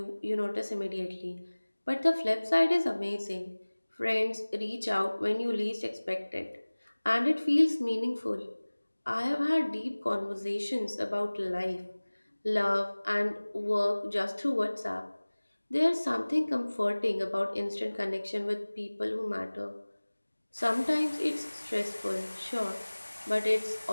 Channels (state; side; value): inverted; both; correlation -1.00